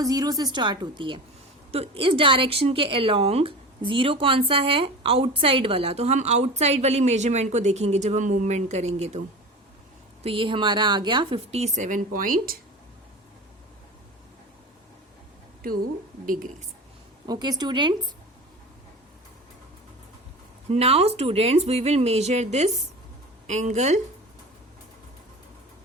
0 से स्टार्ट होती है. तो इस डायरेक्शन के अलोंग 0 कौन सा है, आउटसाइड वाला. तो हम आउटसाइड वाली मेजरमेंट को देखेंगे जब हम मूवमेंट करेंगे. तो ये हमारा आ गया 57.2 degrees. Okay students, now students, we will measure this angle.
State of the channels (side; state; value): both; normal; correlation 0.33